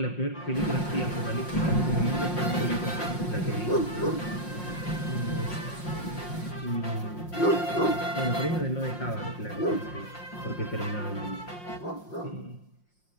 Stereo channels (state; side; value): late; right; 5.6 ms